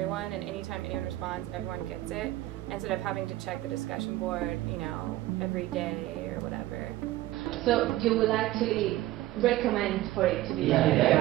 and anytime anyone responds, everyone gets it, instead of having to check the discussion board, you know, every day or whatever. So you will actually recommend for it to be yeah.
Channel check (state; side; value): quieter; left; 16.2 dB